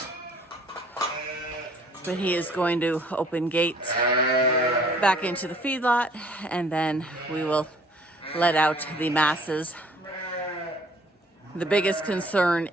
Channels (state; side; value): normal; both; correlation 0.56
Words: But he is going to open gates back into the feedlot, and then we will let out the masses. The biggest concern